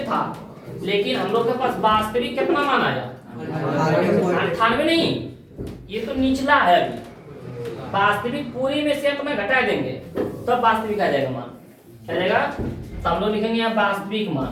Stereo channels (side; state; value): both; identical; correlation 1.00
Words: था। लेकिन हम लोग के पास वास्तविक कितना मान आया 98 नहीं ये तो निचला है। अभी वास्तविक पूरी में से अपना घटा देंगे तब वास्तविक आ जाएगा मान। क्या जाएगा तो हम लोग लिखेंगे यहाँ वास्तविक